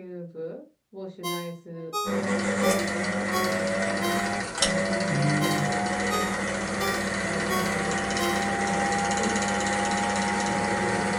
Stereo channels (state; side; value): identical; both; correlation 1.00